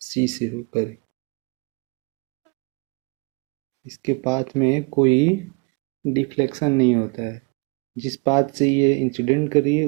सी से होकर। इसके पाथ में कोई डिफ्लेक्शन नहीं होता है। जिस पाथ से ये इंसिडेंट करी है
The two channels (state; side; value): quieter; left; 30.8 dB